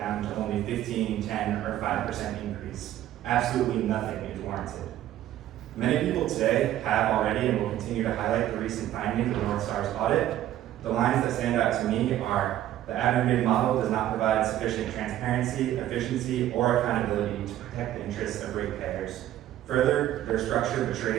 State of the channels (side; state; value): left; quieter; 12.9 dB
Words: to only 15, 10, or 5% increase. Absolutely nothing is warranted. Many people today have already and will continue to highlight the recent findings of North Star's audit. The lines that stand out to me are: the aggregated model does not provide sufficient transparency, efficiency, or accountability to protect the interests of ratepayers. Further, their structure